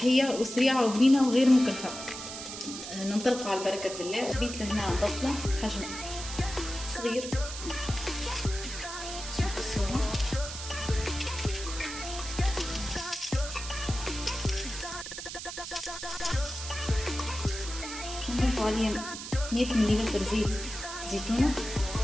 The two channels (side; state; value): right; noise; hiss, 8 dB below the sound